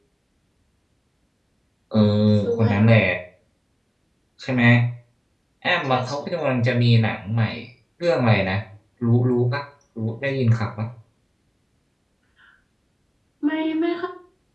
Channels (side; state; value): both; identical; correlation 1.00